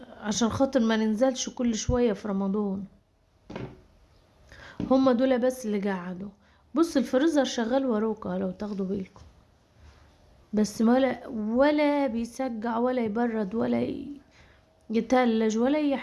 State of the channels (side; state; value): both; identical; correlation 1.00